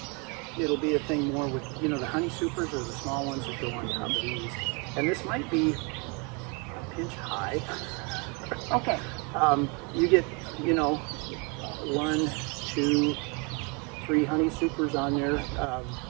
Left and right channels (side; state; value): left; quieter; 32.2 dB